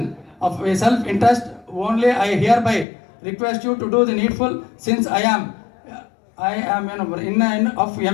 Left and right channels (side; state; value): right; drops out; at 2.9 s